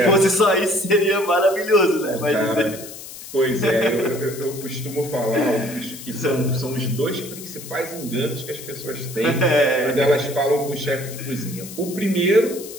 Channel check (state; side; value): noise; left; hiss, 13 dB below the sound